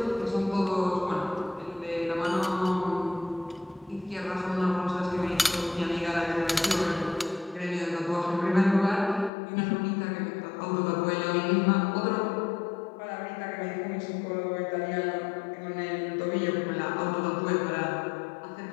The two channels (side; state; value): right; drops out; at 9.3 s